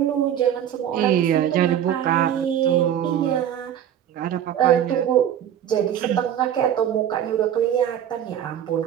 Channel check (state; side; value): quieter; left; 10.1 dB